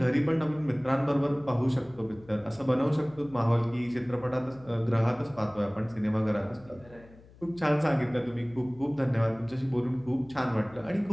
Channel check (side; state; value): left; noise; hum, 23 dB below the sound